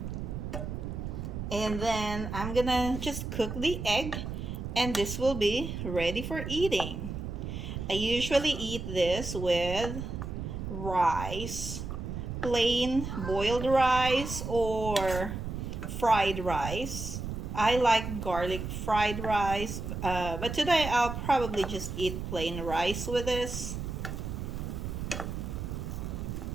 And then I'm gonna just cook the egg, and this will be ready for eating. I usually eat this with rice, plain boiled rice or fried rice. I like garlic fried rice, but today I'll probably just eat plain rice with this.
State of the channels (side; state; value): right; noise; rumble, 5 dB below the sound